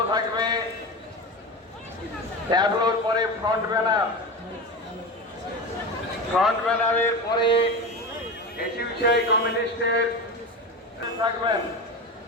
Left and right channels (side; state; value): both; normal; correlation 0.24